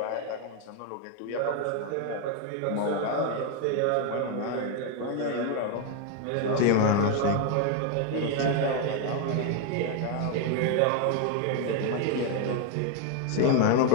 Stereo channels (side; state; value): both; different; correlation 0.01